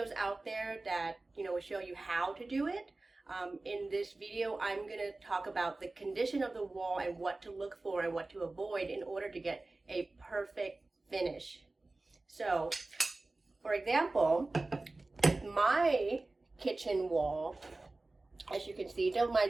out there that, will show you how to do it. In this video, I'm going to talk about the condition of the wall and what to look for and what to avoid in order to get a perfect finish. So, for example, my kitchen wall, as you can see, don't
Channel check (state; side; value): quieter; left; 3.1 dB